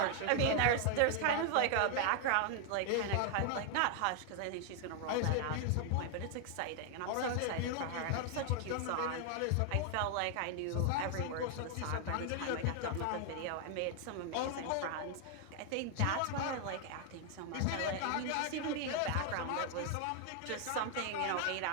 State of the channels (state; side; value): different; both; correlation 0.00